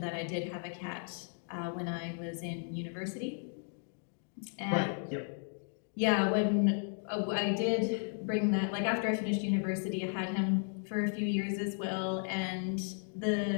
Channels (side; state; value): right; silent; 55 dB below the other